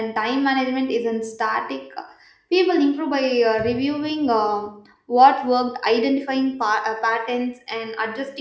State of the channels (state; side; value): identical; both; correlation 1.00